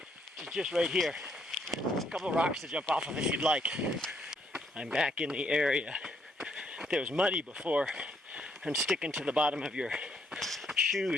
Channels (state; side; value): normal; both; correlation 0.71